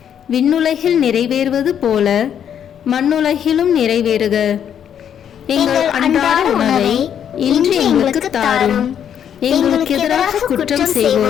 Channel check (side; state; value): right; quieter; 8.9 dB